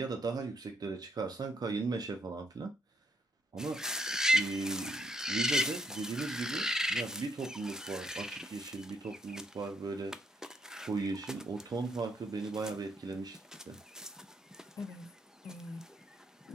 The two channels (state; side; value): normal; both; correlation 0.74